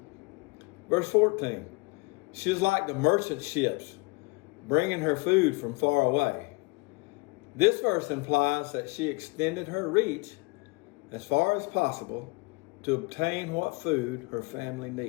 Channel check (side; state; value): right; quieter; 27.7 dB